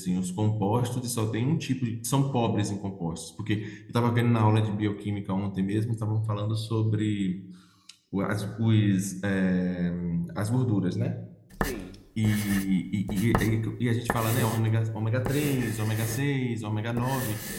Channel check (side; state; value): both; identical; correlation 1.00